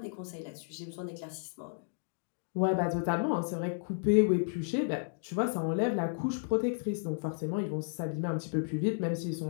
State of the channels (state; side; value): silent; right; digital silence